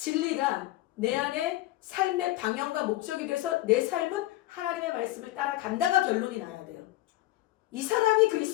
내 안에 삶의 방향과 목적이 돼서 내 삶은 하나님의 말씀을 따라간다가 결론이 나야 돼요. 이 사람이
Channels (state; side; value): quieter; right; 16.5 dB